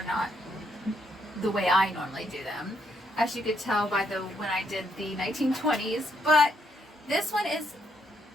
not the way I normally do them, as you could tell by when I did the 1920s, but this one is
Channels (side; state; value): both; normal; correlation 0.74